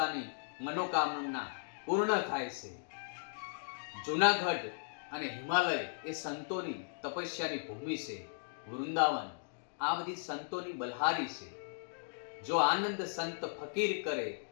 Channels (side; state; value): right; silent; digital silence